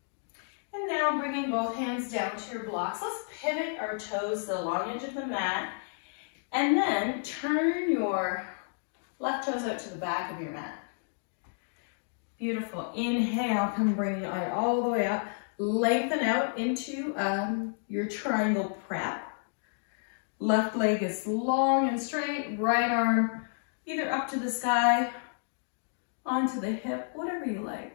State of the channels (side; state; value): right; silent; digital silence